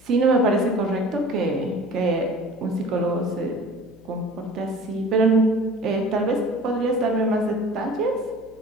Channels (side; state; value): left; noise; hum, 26 dB below the sound